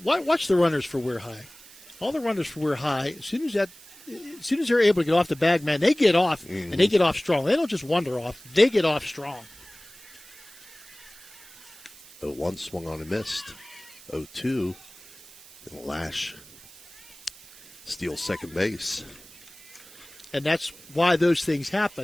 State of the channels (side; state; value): right; noise; hiss, 21 dB below the sound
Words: watch the runners for WEIR High. all the runners for Weir High, as soon as they're able to get off the bag, man, they get off, and they get off strong. They don't just wander off. They get off strong. 0-1 swung on and missed. 0-2. And Lash steals second base. And that's why those things